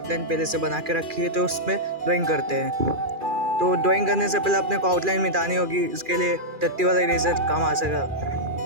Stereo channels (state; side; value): late; left; 2.4 ms